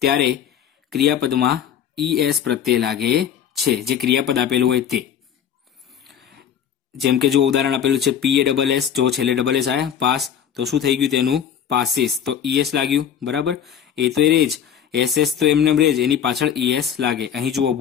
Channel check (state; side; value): quieter; right; 8.8 dB